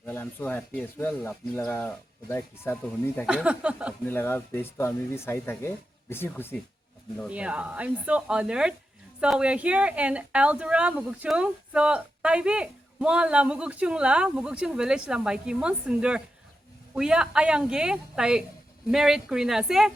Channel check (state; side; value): normal; both; correlation 0.89